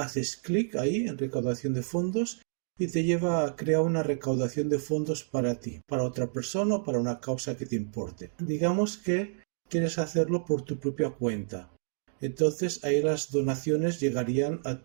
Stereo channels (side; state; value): left; silent; digital silence